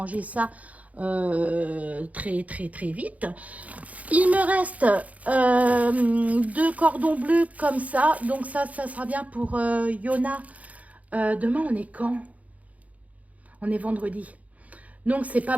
ça très vite. Il me reste 2 cordons bleus comme ça. Donc ça sera bien pour Yona. Demain, on est quand? On est vendredi. Donc c'est pas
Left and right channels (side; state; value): left; late; 0.070 ms